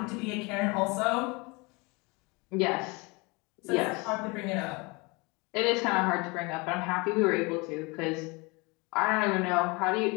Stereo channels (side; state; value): right; quieter; 27.4 dB